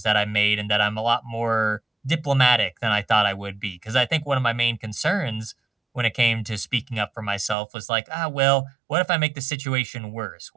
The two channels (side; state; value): left; drops out; at 7.6 s